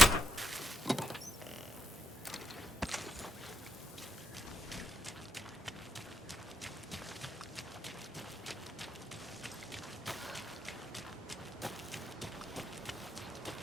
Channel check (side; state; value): both; normal; correlation 0.83